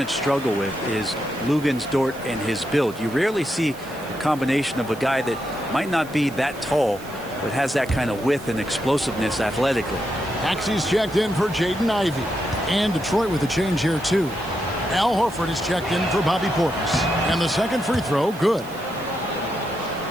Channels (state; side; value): noise; right; hiss, 19 dB below the sound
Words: struggle with is Luguentz-Dort and his build. You rarely see a combination of a guy that might not be that tall, but has that kind of width and explosiveness athletically. Maxey's checked in for Jaden Ivey. And Detroit with a change here, too. Al Horford is checked in for Bobby Portis. And the second free throw, good.